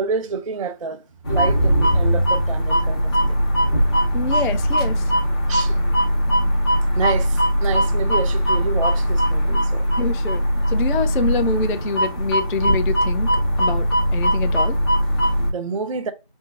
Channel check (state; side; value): inverted; both; correlation -0.79